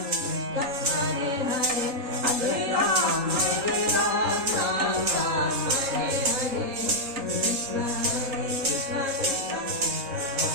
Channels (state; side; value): late; left; 3.7 ms